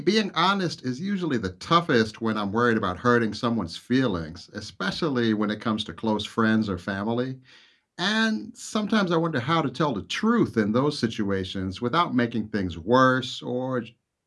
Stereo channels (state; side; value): identical; both; correlation 1.00